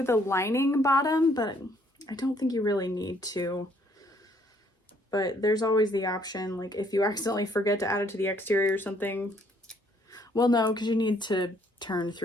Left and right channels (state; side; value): normal; both; correlation 0.65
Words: the lining bottom, but I don't think you really need to. But there's always the option, like if you accidentally forget to add it to the exterior or something. Well, no, because you need to turn